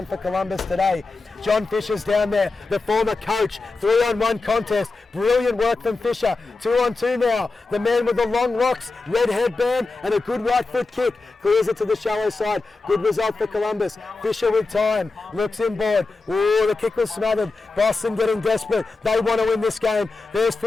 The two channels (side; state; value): right; quieter; 3.7 dB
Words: for Columbus today. John Fisher's down there, the former coach. 3-on-1 contest. Brilliant work from Fisher. 2-on-2 now. The man with the long locks, red headband, and a good right foot kick. Clears it to the shallow side. Good result for Columbus. Fisher with time. Looks inboard. Ooh, the kick was smothered. Boston getting desperate. They want to win this game. There's